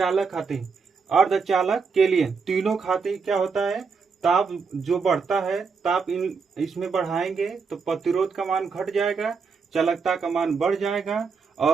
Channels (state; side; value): quieter; left; 5.2 dB